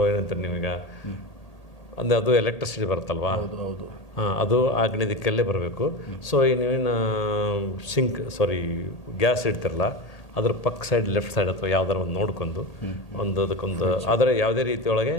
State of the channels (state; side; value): late; right; 1.8 ms